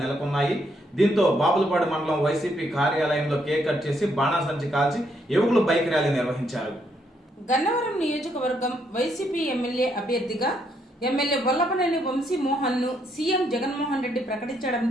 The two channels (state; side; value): normal; both; correlation 0.74